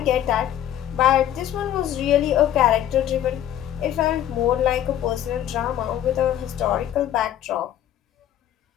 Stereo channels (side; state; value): right; quieter; 11.3 dB